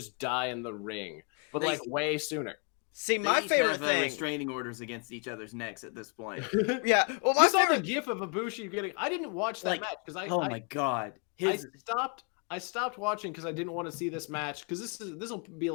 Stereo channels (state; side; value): quieter; right; 38.9 dB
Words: die in the ring, but like way sooner. See, They my each favorite have thing. restraining orders against each other's necks at this point. Yeah, well, you saw the GIF of Ibushi getting. I didn't watch that match because my god, I stopped watching because I didn't want to see this match because this will be